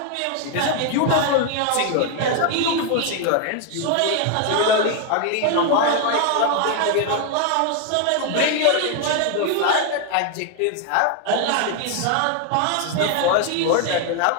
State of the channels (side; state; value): both; different; correlation 0.01